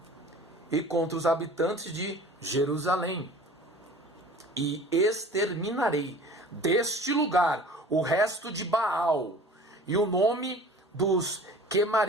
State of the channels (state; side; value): normal; both; correlation 0.44